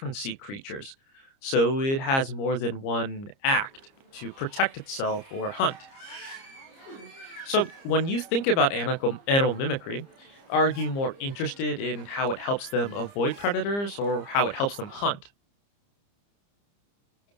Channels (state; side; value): late; right; 30 ms